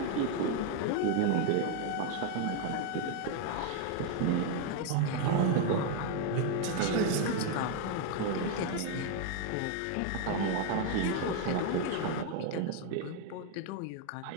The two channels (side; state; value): both; different; correlation 0.01